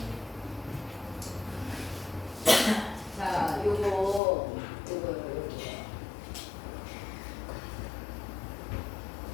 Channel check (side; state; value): right; drops out; at 4.2 s